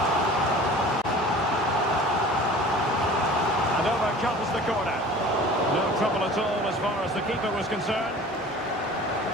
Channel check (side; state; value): both; normal; correlation 0.43